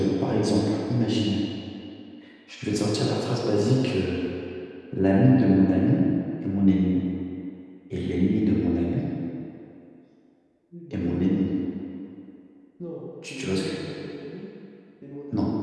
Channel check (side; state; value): both; identical; correlation 1.00